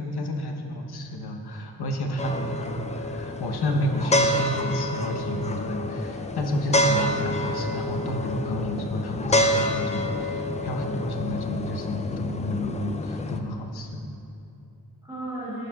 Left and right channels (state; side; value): normal; both; correlation 0.29